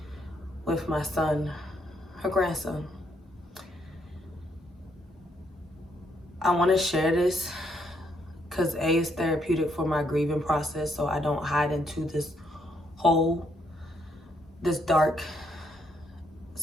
with my son, her grandson. I want to share this because A, is therapeutic for my grieving process, so I don't hide into this hole, this dark.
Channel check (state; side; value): normal; both; correlation 0.74